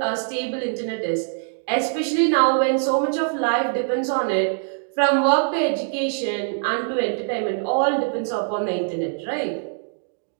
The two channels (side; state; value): left; silent; digital silence